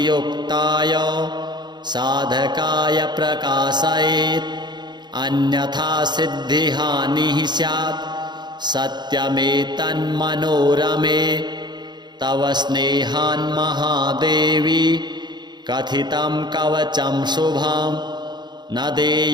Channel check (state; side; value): late; left; 0.21 ms